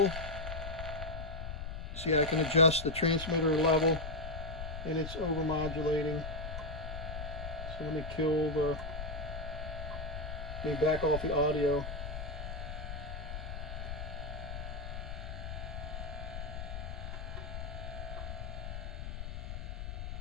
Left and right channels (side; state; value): left; noise; rumble, 6 dB below the sound